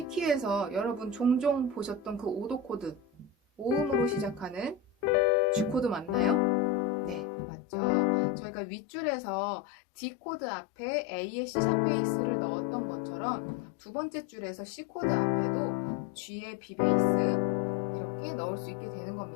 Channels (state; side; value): drops out; right; at 7.2 s